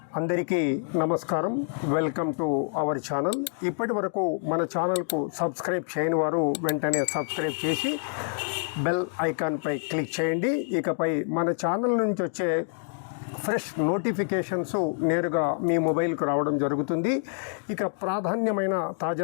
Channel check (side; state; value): right; silent; 60 dB below the other